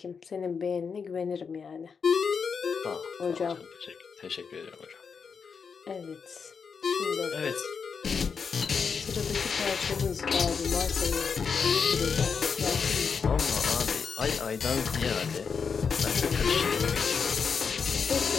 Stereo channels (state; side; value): quieter; right; 5.9 dB